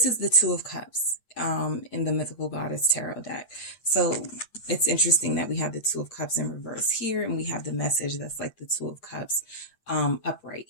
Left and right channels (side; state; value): right; late; 8.7 ms